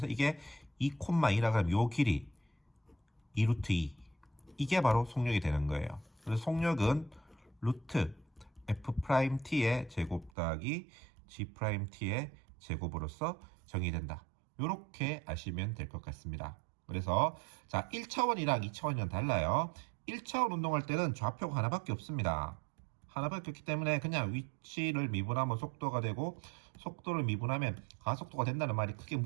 이게 2,2라고 하면 요 길이 2루트 2 이게 바로 속력이 되는 거예요. 그래서 속력은 루트 F'T의 제곱 더하기 G'T의 제곱으로서 정의된다. 이렇게 아시면 될 것 같습니다. 그래서 자 1차원이랑 2차원이랑 달라요. 1차원 운동할 때는 좌표가 하나밖에 없습니다. 하나밖에 없기 때문에 그냥 위치를 미분하면 속도가 되고 속도를 미분하면 가속도가 된다는 말이 크게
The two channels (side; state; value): left; drops out; at 10.3 s